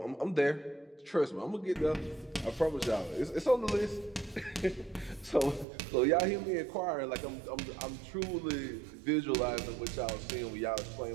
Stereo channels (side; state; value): left; drops out; at 5.7 s